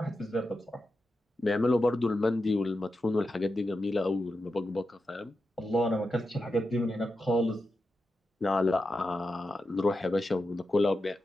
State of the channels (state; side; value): normal; both; correlation 0.89